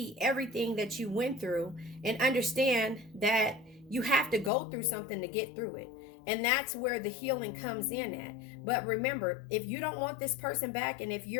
everything that you went through and understand that you have to go through something to get through it. And that's where the healing comes in at. But remember, if you don't want this person back, and if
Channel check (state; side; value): drops out; right; at 4.5 s